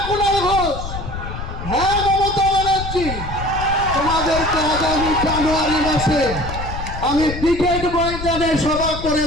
কুণাল ঘোষ, হ্যাঁ মমতা ব্যানার্জি, তোমাদেরকে আগামী জানুয়ারি মাসে আমি ব্রিগেড ময়দানে সভা করে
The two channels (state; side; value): noise; left; rumble, 7 dB below the sound